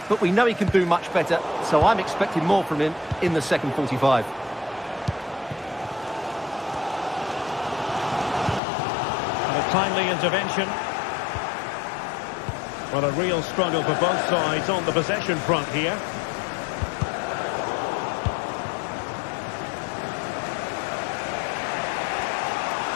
But we know he can do much better, so I'm expecting more from him in the second 45. And a timely intervention. Well, a real struggle for both sides on the possession front here.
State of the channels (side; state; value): right; drops out; at 8.6 s